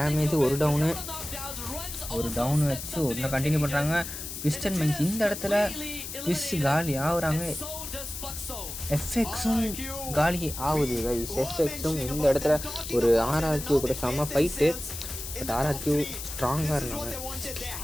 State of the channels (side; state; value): left; noise; hiss, 8 dB below the sound